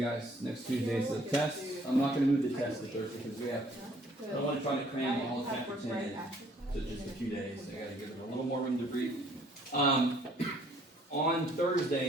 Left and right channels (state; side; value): normal; both; correlation 0.61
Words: guys. Next Tuesday is the test. I'm not going to move the test to Thursday because I don't want to try to cram all of chapter 10 in to just a few days. I got to give it a little more room to breathe. On